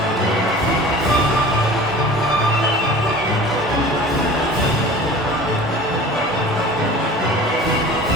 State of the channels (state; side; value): normal; both; correlation 0.41